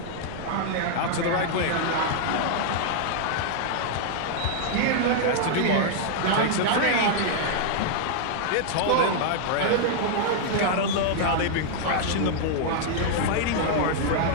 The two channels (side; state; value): both; different; correlation -0.01